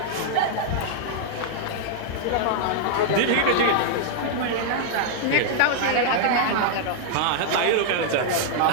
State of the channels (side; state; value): both; different; correlation -0.01